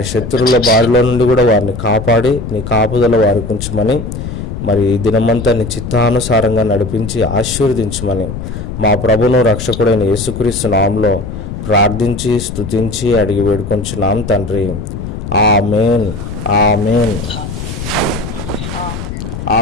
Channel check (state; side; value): noise; left; rumble, 7 dB below the sound